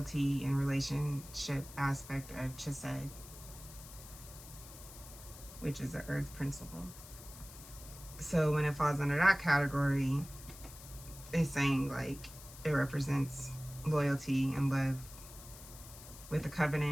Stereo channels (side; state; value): left; noise; hiss, 16 dB below the sound